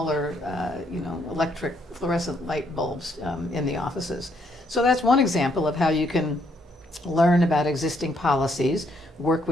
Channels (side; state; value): both; normal; correlation 0.72